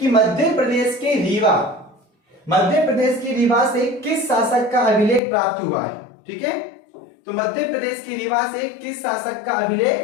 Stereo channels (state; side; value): drops out; right; at 5.2 s